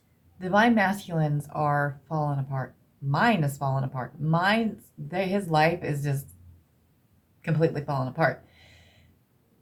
Divine masculines are falling apart. Mine is falling apart. His life is just completely falling apart.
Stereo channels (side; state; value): both; identical; correlation 1.00